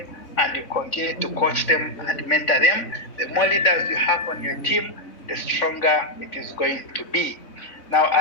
and you continue to coach them and mentor them. The more leaders you have on your team, the stronger it is going to be. Now,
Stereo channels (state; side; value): late; right; 3.6 ms